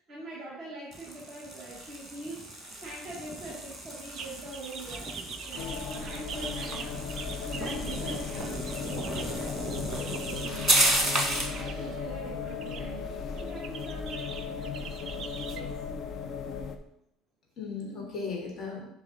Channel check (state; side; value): normal; both; correlation 0.50